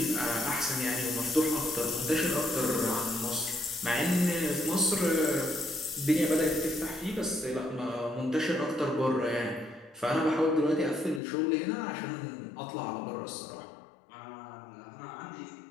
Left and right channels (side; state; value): right; drops out; at 11.2 s